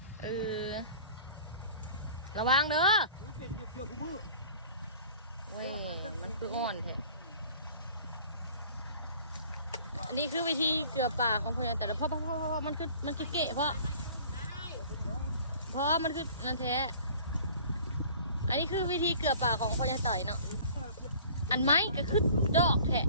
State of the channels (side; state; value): both; inverted; correlation -0.48